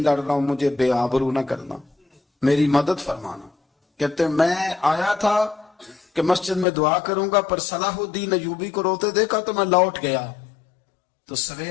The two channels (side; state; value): right; drops out; at 6.7 s